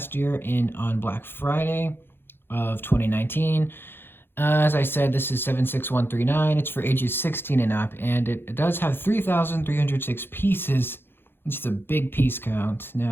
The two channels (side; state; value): right; late; 0.10 ms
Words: year on Black Friday of 2019. As I said, this is 76139. It's for ages 16 and up, and it does have 3,306 pieces, which is a big piece count.